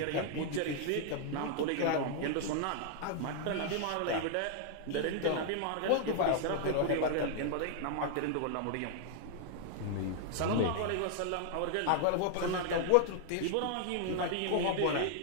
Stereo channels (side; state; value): both; different; correlation 0.00